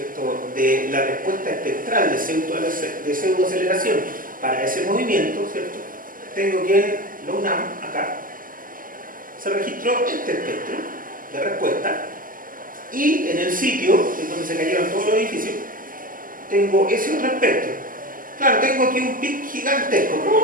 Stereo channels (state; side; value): late; left; 0.41 ms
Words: de la respuesta espectral de pseudoaceleración para ese movimiento, ¿cierto?, tengo que en la UNAM, acá, se registró este espectro de respuesta. Y en el sitio, en donde se cayeron todos los edificios, tengo ese otro espectro. Claro, tengo aquí un pic gigantesco.